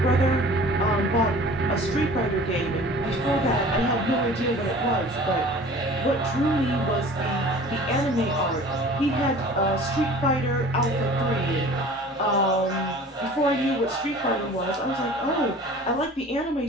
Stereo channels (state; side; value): normal; both; correlation 0.44